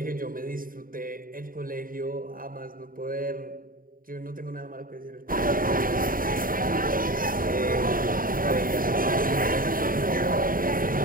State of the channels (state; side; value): late; left; 0.41 ms